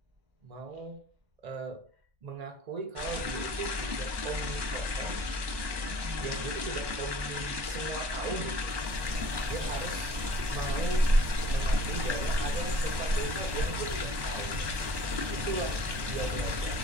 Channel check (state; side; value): late; left; 1.1 ms